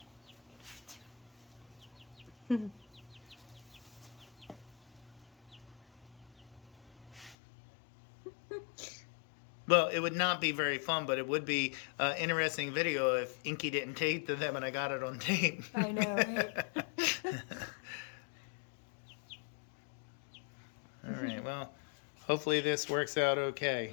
Well, it would not be very fun, but it would be an interesting video if Inky didn't tape to them and I got it on tape. I know, right? All right, well, hopefully this works out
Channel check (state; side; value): drops out; right; at 7.4 s